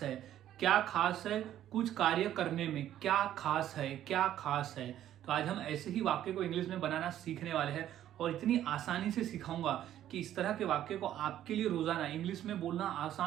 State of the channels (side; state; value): left; quieter; 11.8 dB